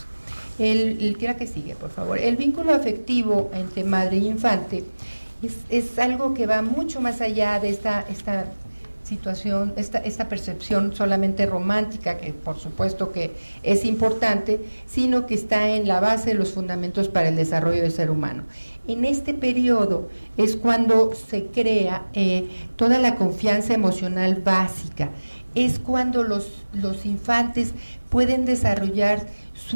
¿Qué que sigue, por favor? El vínculo afectivo entre madre y infante es algo que va mucho más allá de esta situación, esta percepción solamente romántica, que por supuesto que es importante, sino que está en la base de los fundamentos para el desarrollo del ser humano. En este periodo es cuando se crea toda la confianza emocional básica, es cuando los infantes pueden desarrollar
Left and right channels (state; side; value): inverted; both; correlation -1.00